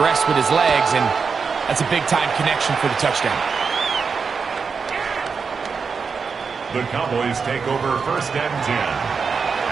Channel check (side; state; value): left; quieter; 5.4 dB